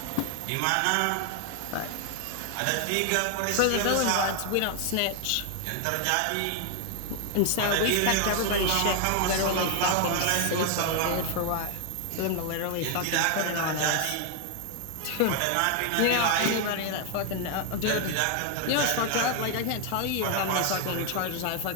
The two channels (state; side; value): different; both; correlation 0.00